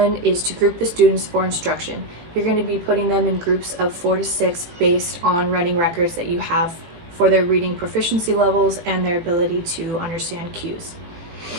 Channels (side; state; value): left; late; 18 ms